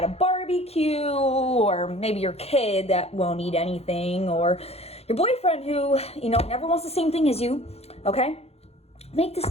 a barbecue, or maybe your kid that won't eat anything, or your boyfriend who, you know, never wants the same thing as you, okay? Make this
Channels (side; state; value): right; late; 0.30 ms